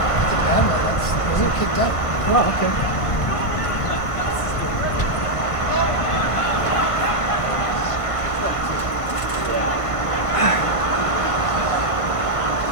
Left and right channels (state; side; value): late; right; 1.5 ms